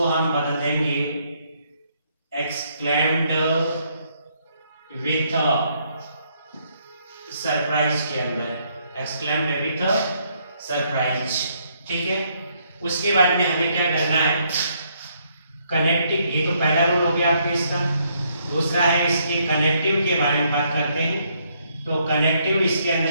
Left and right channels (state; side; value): inverted; both; correlation -0.71